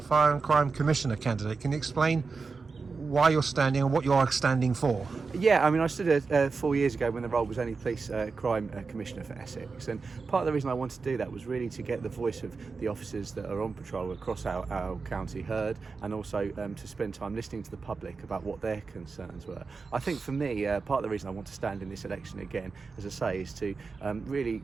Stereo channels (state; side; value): quieter; left; 4.6 dB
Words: Fire and Crime Commissioner candidate. Can you explain why you're standing and what you are standing for? Yeah, I mean, I stood 4 years ago when the role was only Police Crime Commissioner for Essex, and part of the reason I wanted to do that was really to get the voice of the officers that are on patrol across our county heard, and also to spend time listening to the public about what their concerns were. I think for me, part of the reason I want to stand in this election again, as I say, is to really